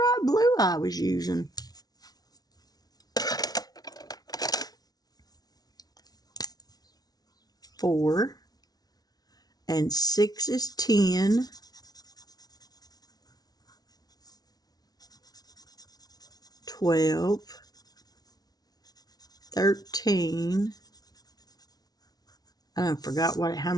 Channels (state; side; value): late; right; 0.19 ms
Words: blue I was using? Four. And 6 is 10. 12. 13. I forgot how